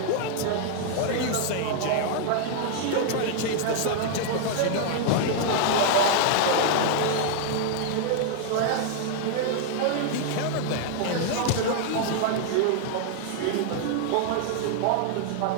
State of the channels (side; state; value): both; different; correlation 0.00